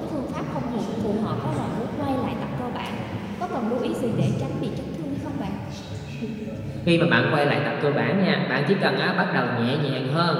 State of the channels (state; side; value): identical; both; correlation 1.00